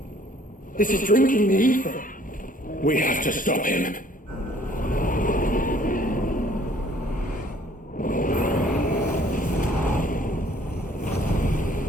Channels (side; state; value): both; normal; correlation 0.58